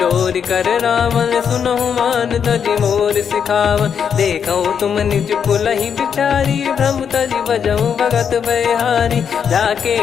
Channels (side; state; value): right; quieter; 7.4 dB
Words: कर रावण, सुनहु मान तजि मोर सिखावन। देखऊँ तुम निज पुलहि बिचारी, भ्रम तजि बजऊँ भगत बहारी। जाके